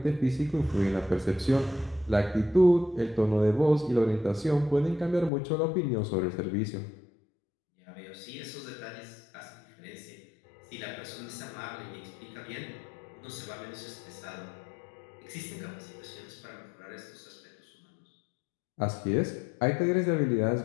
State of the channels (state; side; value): drops out; right; at 5.3 s